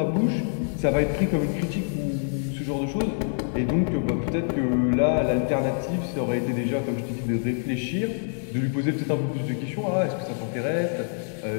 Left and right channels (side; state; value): right; silent; digital silence